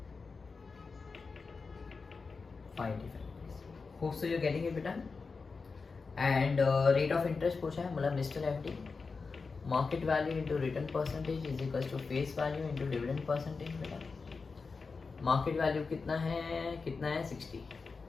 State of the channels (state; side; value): quieter; right; 4.6 dB